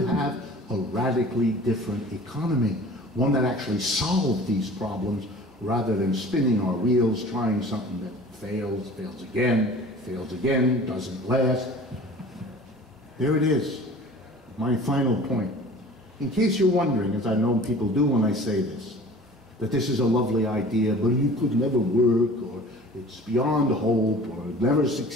have a radically different economy, one that actually solved these problems rather than spinning our wheels, trying something that fails, fails again, doesn't last. There it is, my final point. In case you're wondering, as I know people do when I say this, that this is a lovely idea, but it could never work, or it's beyond hope, or it never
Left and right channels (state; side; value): normal; both; correlation 0.44